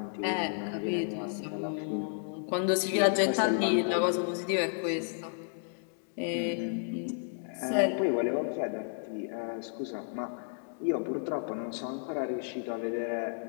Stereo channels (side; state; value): right; silent; digital silence